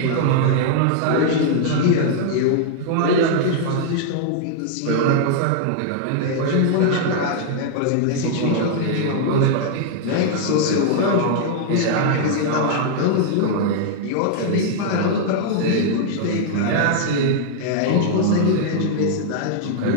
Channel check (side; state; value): both; different; correlation -0.01